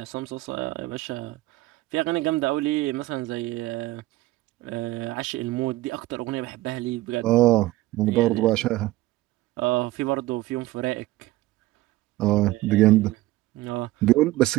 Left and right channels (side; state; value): left; quieter; 17.8 dB